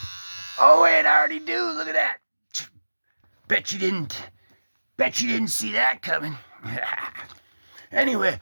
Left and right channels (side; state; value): both; inverted; correlation -1.00